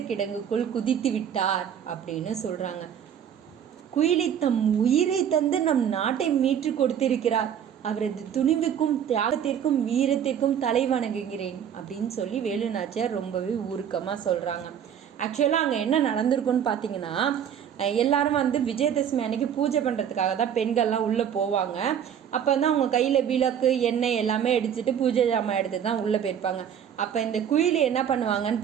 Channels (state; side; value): quieter; left; 8.8 dB